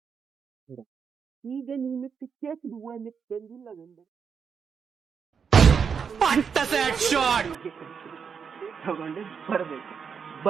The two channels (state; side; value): quieter; left; 6.5 dB